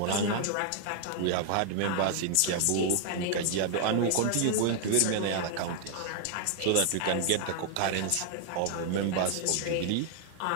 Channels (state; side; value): different; both; correlation 0.00